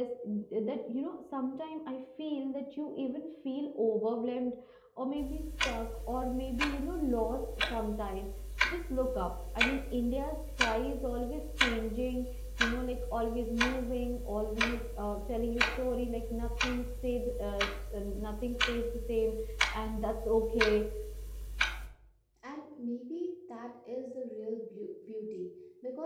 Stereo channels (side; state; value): both; identical; correlation 1.00